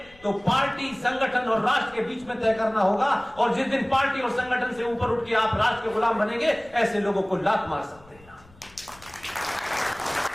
तो पार्टी, संगठन और राष्ट्र के बीच में तय करना होगा। और जिस दिन पार्टी और संगठन से ऊपर उठ के आप राष्ट्र के गुलाम बनेंगे, ऐसे लोगों को लात मार सकते हैं।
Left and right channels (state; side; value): noise; left; rumble, 25 dB below the sound